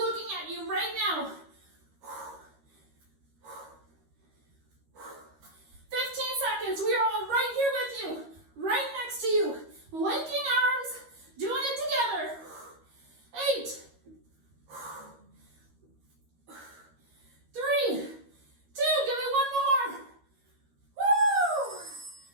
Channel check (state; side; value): late; left; 13 ms